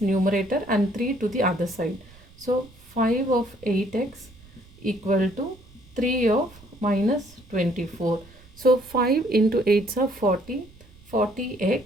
numerator and 3 to the other side. So 5 of 8x equal to 3 of minus 24. So 5 into 8s are 40.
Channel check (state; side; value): noise; right; rumble, 24 dB below the sound